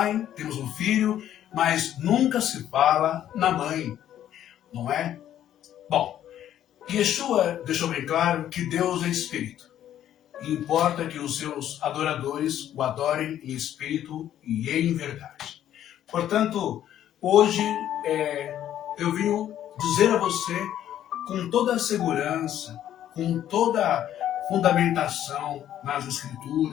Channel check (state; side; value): quieter; right; 11.3 dB